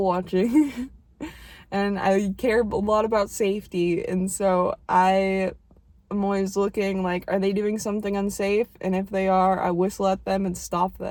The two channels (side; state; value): both; identical; correlation 1.00